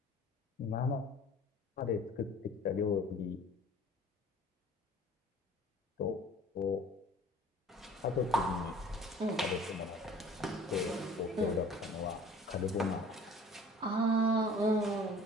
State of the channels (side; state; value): both; normal; correlation 0.49